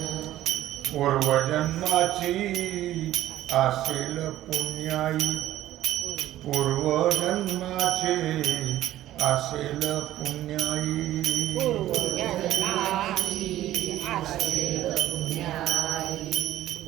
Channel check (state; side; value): quieter; left; 13.9 dB